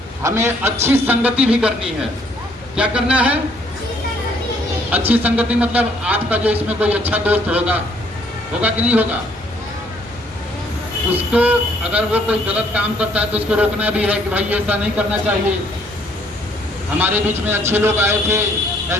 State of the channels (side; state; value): both; normal; correlation 0.65